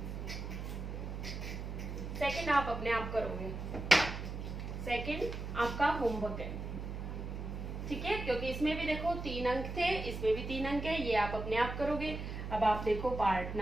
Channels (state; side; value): noise; right; hum, 6 dB below the sound